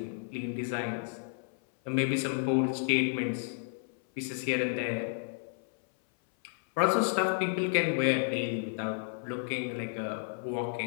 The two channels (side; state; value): right; silent; 57 dB below the other